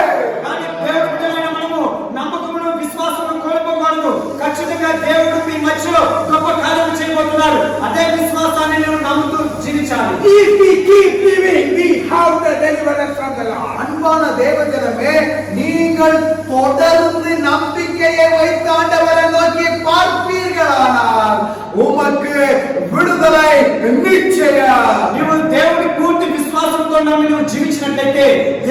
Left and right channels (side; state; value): both; identical; correlation 1.00